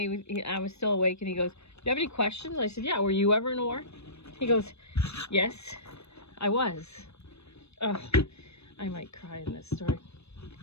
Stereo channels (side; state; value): right; late; 0.79 ms